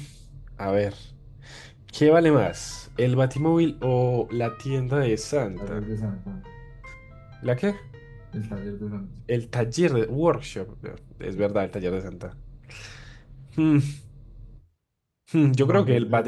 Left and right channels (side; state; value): both; identical; correlation 1.00